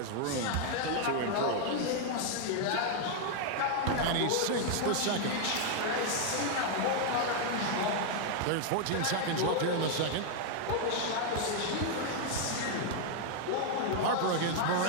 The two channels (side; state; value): both; different; correlation 0.00